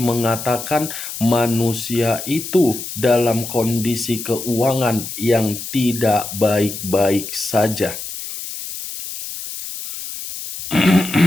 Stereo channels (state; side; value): noise; left; hiss, 9 dB below the sound